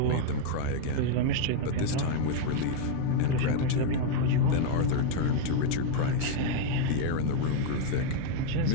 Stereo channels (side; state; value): both; different; correlation 0.00